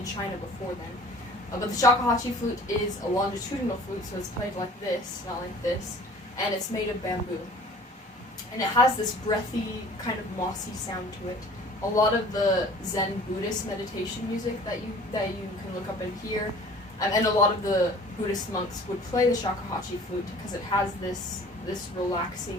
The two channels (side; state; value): both; normal; correlation 0.48